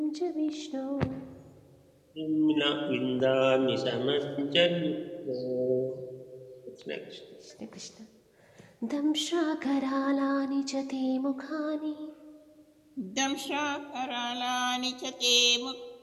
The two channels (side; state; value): both; identical; correlation 1.00